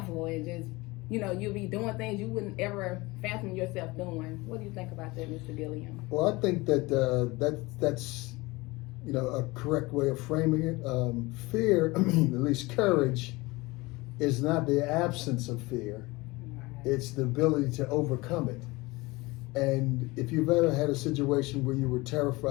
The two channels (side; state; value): right; quieter; 22.6 dB